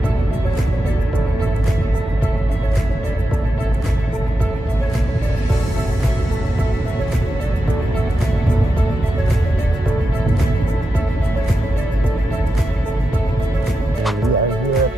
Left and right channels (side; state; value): both; normal; correlation 0.88